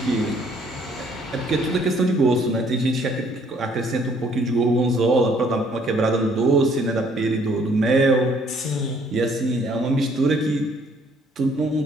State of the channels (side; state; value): both; normal; correlation 0.63